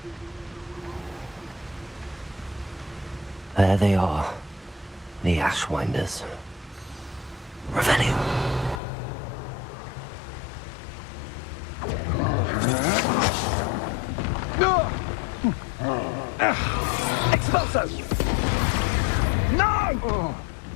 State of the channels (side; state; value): right; drops out; at 8.8 s